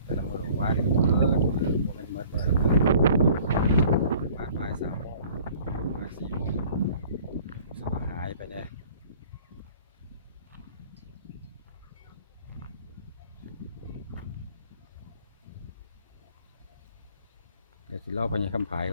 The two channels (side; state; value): both; inverted; correlation -0.51